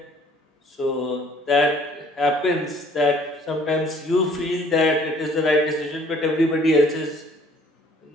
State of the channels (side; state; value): both; normal; correlation 0.57